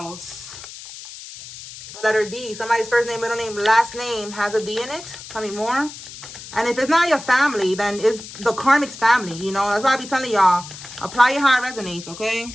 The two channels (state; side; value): noise; left; hiss, 14 dB below the sound